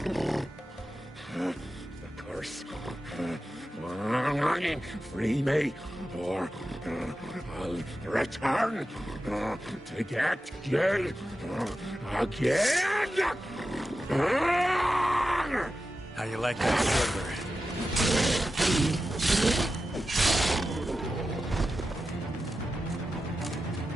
curse. Free me, or I'll return to get you again. How you like that sugar?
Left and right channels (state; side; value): normal; both; correlation 0.92